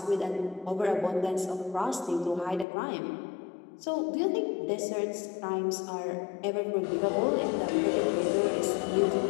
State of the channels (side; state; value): right; drops out; at 2.7 s